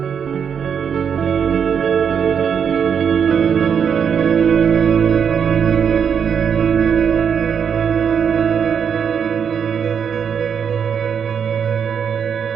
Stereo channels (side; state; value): left; quieter; 7.3 dB